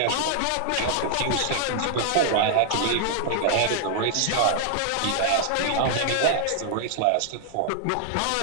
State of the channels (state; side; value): different; both; correlation 0.00